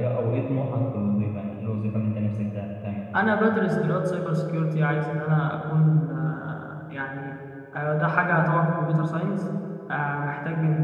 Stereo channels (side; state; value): both; identical; correlation 1.00